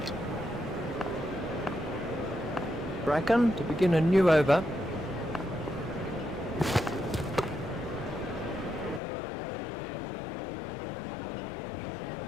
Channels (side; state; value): right; drops out; at 9.0 s